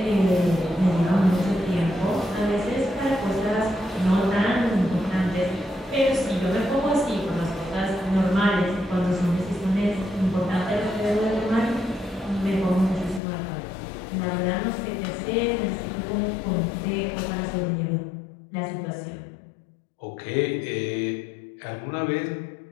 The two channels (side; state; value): right; drops out; at 13.2 s